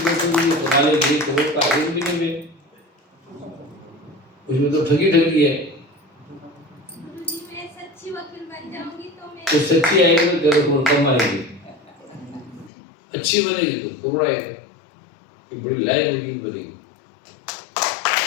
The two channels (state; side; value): drops out; right; at 12.7 s